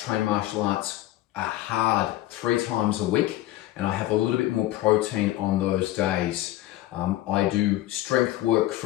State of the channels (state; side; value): quieter; right; 15.3 dB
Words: train martial arts hard 3 times a week, and I have a little bit more protein on those days. I do strength work